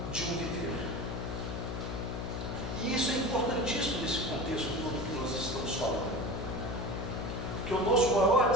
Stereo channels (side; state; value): left; noise; hum, 4 dB below the sound